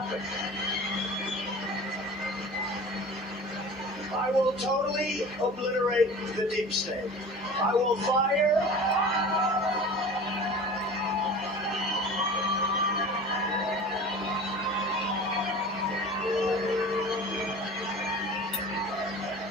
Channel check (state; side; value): normal; both; correlation 0.38